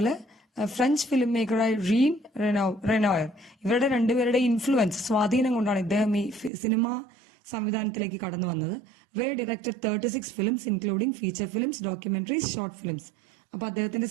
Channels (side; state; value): left; drops out; at 6.5 s